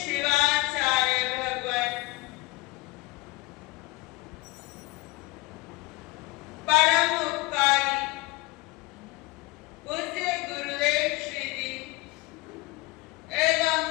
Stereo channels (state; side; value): quieter; right; 22.1 dB